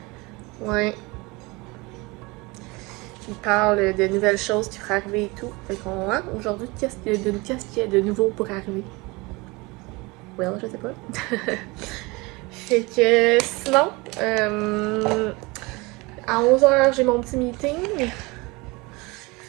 Ouais. Il parle de nouvelles choses qui pourraient arriver et tout. Fait qu'on, aujourd'hui, qu'est-ce qu'il y a de nouveau pour arriver? Well, je sais pas. Fait que, sinon, à 11h, j'ai mon petit meeting.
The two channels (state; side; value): quieter; left; 24.9 dB